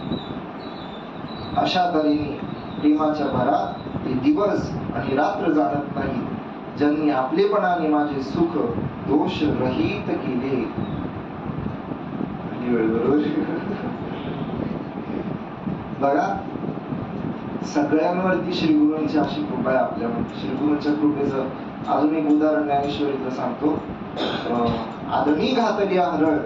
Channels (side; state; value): both; identical; correlation 1.00